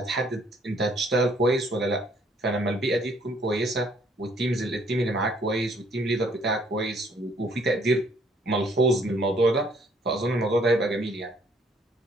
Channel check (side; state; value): both; normal; correlation 0.64